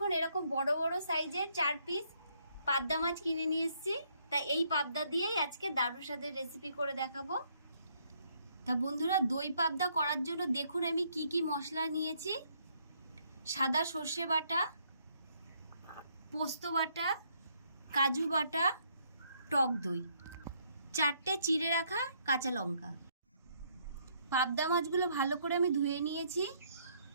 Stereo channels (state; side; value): inverted; both; correlation -0.69